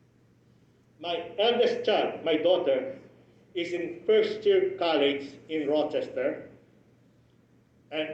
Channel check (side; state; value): both; identical; correlation 1.00